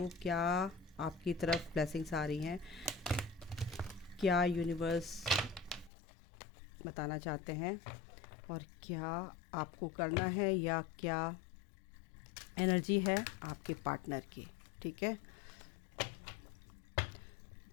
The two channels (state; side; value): drops out; right; at 5.9 s